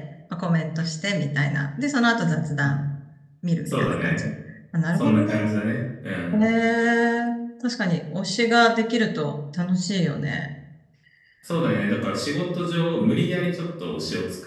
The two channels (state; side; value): identical; both; correlation 1.00